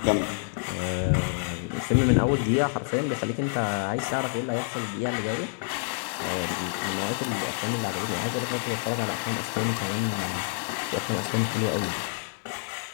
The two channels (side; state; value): right; silent; digital silence